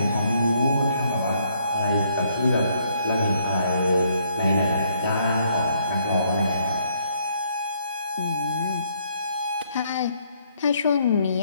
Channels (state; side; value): inverted; both; correlation -0.68